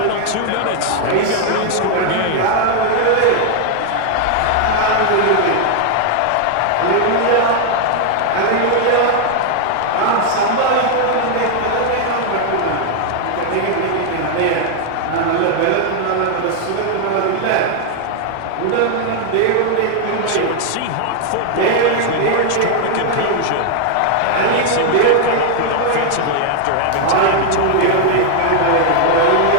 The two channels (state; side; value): different; both; correlation 0.00